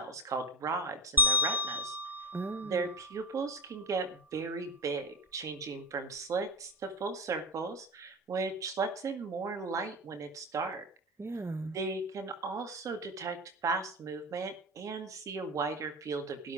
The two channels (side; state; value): both; normal; correlation 0.19